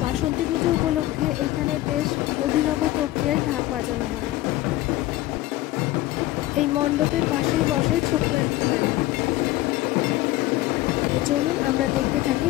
বাসন্তী পুজো উপলক্ষে এখানে বেশ অভিনব প্রক্রিয়ায় ঢাক বাজানো হয়। এই মণ্ডপের পাশেই বসে ছোট্ট একটি মেলা। তো চলুন আমরা দেখতে থাকি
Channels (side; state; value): right; quieter; 16.6 dB